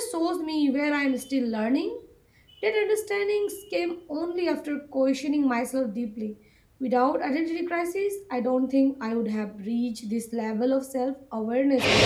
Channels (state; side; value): identical; both; correlation 1.00